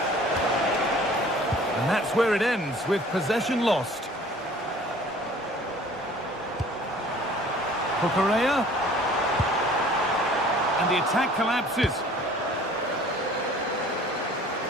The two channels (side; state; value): both; normal; correlation 0.50